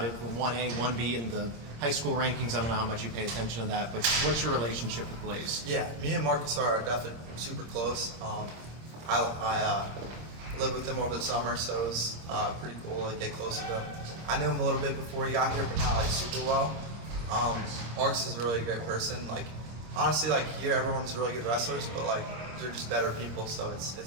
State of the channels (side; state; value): left; late; 26 ms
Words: from 1A, 1B in the high school rankings. I don't know how much you pay attention to that, but what's your relationship with Blaze? Yeah, me and Marcus are definitely super close. I lived with him over the summer, so it was pretty cool to get close to him. I knew him a little bit before he got here, but not like super well. Marcus is a really great person. Like honestly, like here everyone's really good wrestlers, but like they're just better people. So